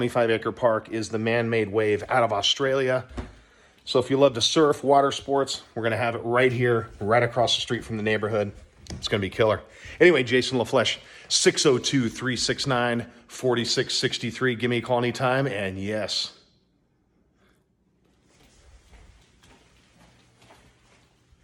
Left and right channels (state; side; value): identical; both; correlation 1.00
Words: park is the man-made wave out of Australia. So if you love to surf, water sports, we're going to have it right here, right across the street from the neighborhood. It's going to be killer. Anyway, Jason LaFlesch, 602-369-4663. Give me a call anytime, and yes.